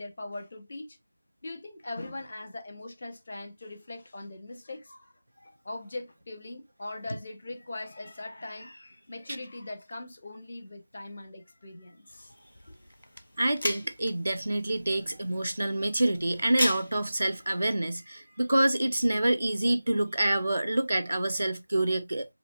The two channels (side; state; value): both; inverted; correlation -0.96